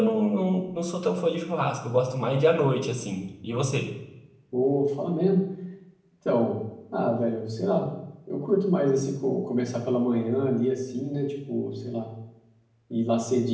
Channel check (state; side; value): identical; both; correlation 1.00